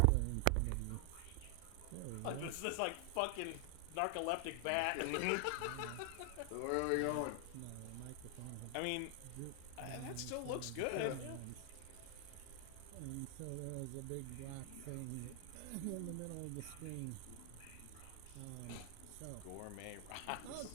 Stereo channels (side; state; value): both; different; correlation 0.00